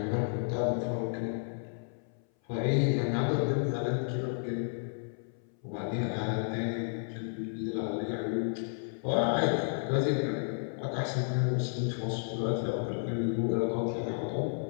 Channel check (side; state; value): right; silent; 56 dB below the other